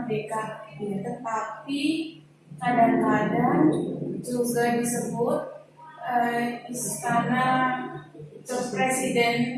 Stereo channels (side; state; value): both; identical; correlation 1.00